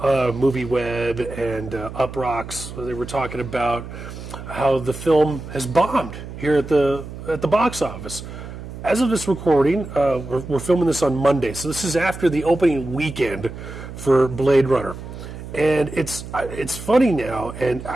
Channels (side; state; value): right; noise; hum, 11 dB below the sound